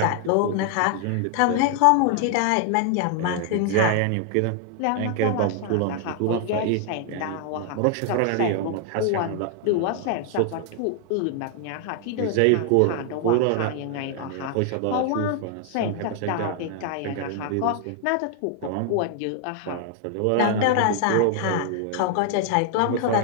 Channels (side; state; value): both; different; correlation 0.00